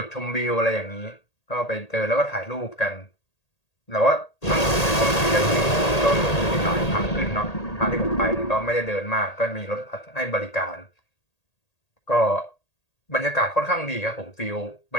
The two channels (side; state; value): right; late; 1.8 ms